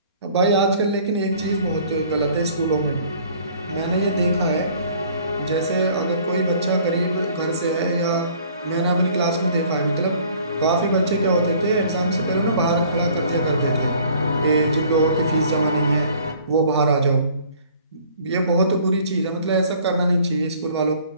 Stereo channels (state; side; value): inverted; both; correlation -0.55